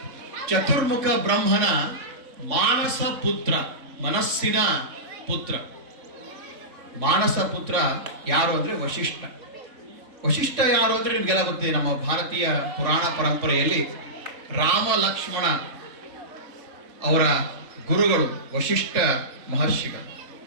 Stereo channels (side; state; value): left; late; 3.3 ms